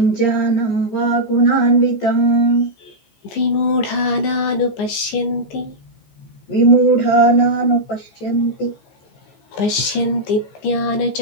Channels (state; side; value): late; right; 15 ms